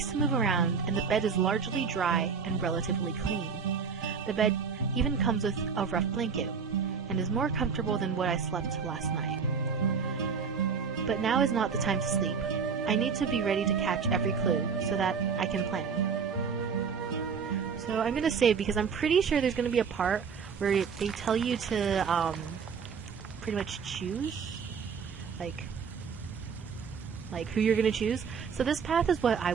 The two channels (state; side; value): quieter; left; 6.0 dB